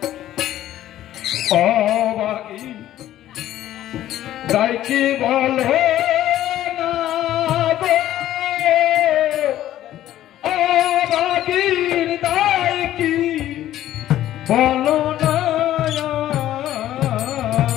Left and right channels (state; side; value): quieter; right; 13.1 dB